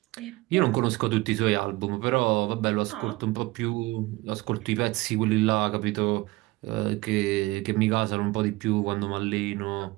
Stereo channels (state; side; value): quieter; left; 21.0 dB